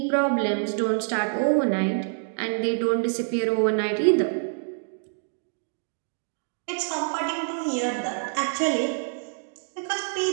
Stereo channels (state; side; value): silent; left; digital silence